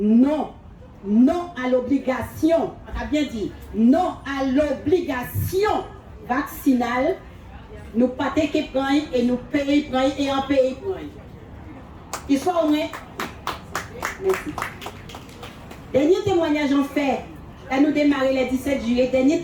Non à l'obligation, on a bien dit, non à l'obligation vaccinale, nous pas qui prennent et nous payons et en pays prennent. Il soit au moins. Merci. Dernier témoignage en fait, là nous démarrons le 17 juillet, dernier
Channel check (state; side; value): identical; both; correlation 1.00